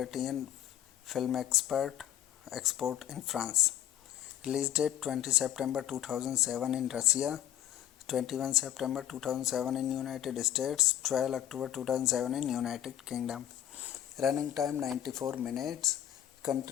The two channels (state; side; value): quieter; right; 11.4 dB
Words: Film Export in France. Release date 20 September 2007 in Russia, 21 September 2007 in United States, 12 October 2007 in United Kingdom. Running time 94 minutes.